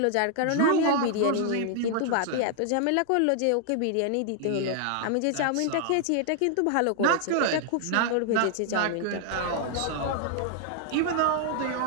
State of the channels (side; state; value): both; different; correlation 0.00